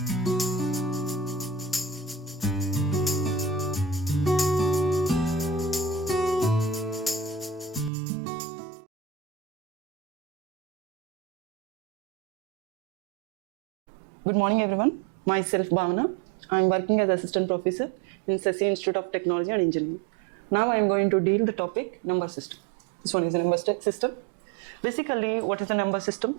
morning everyone, myself Bhavana. I am working as assistant professor in Sasi Institute of Technology and Engineering. Now I am going to deal the topic number system. This one is a number system. Basically, what is a number system?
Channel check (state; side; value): drops out; left; at 7.9 s